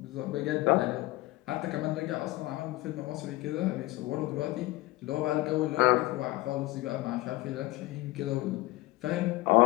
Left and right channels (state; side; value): quieter; right; 19.1 dB